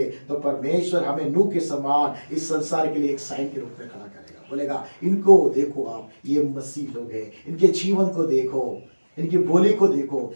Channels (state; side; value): inverted; both; correlation -1.00